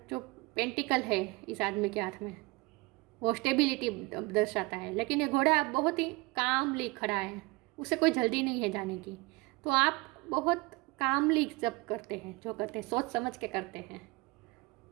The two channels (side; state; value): left; quieter; 24.9 dB